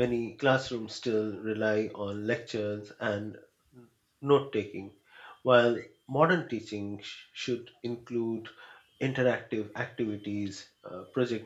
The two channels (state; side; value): identical; both; correlation 1.00